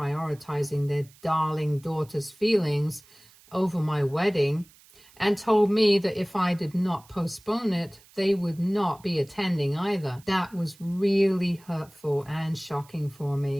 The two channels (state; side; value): noise; right; hiss, 26 dB below the sound